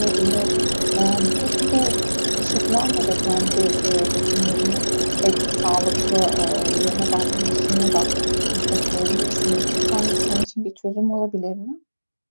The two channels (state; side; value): inverted; both; correlation -1.00